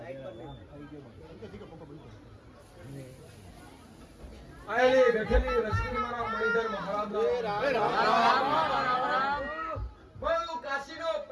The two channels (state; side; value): identical; both; correlation 1.00